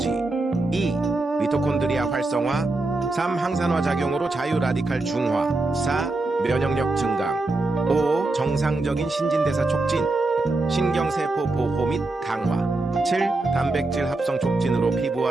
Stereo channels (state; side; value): quieter; left; 3.1 dB